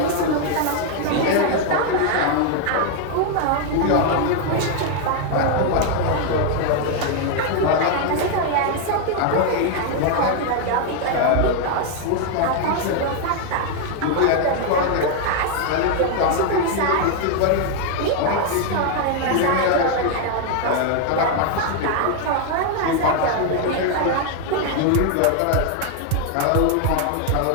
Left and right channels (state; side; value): different; both; correlation 0.01